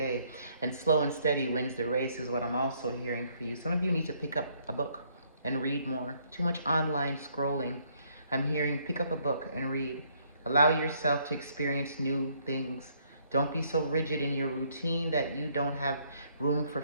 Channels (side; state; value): both; inverted; correlation -0.67